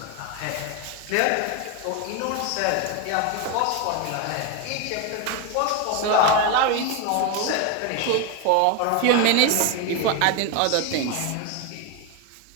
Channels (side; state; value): both; different; correlation 0.02